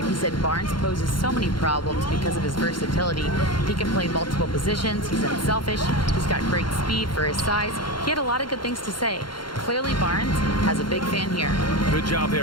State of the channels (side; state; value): right; late; 0.72 ms